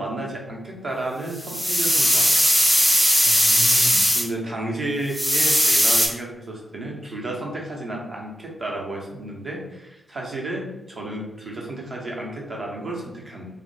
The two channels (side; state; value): both; normal; correlation 0.93